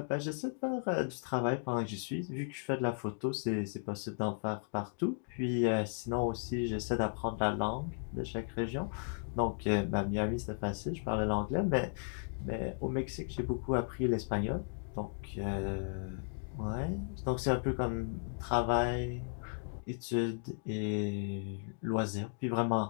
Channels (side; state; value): right; silent; digital silence